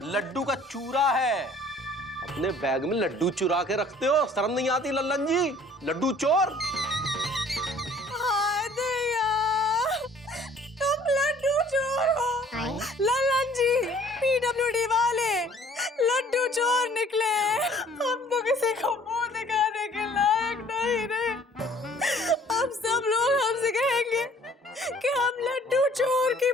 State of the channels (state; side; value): normal; both; correlation 0.55